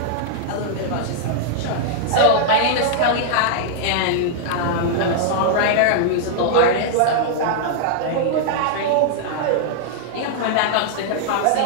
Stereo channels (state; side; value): different; both; correlation -0.01